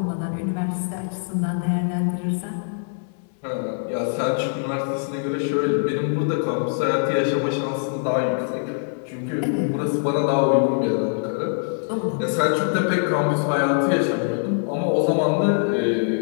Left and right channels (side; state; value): right; silent; digital silence